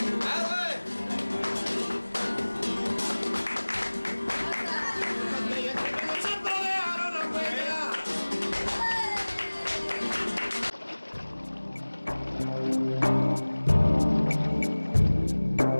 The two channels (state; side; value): inverted; both; correlation -1.00